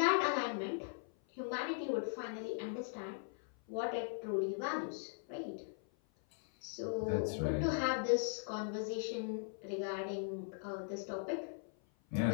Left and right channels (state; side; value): silent; right; 52 dB below the other